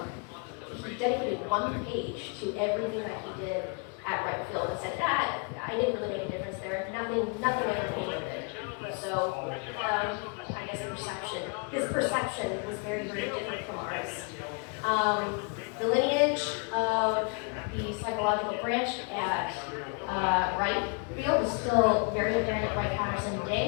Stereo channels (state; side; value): quieter; right; 35.0 dB